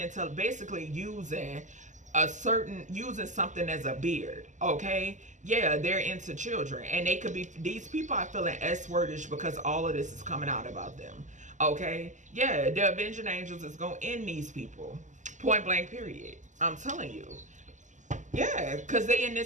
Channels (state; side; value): late; left; 0.36 ms